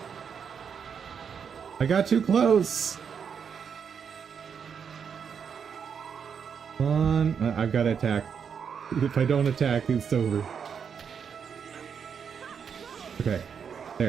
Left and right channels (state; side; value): quieter; left; 7.0 dB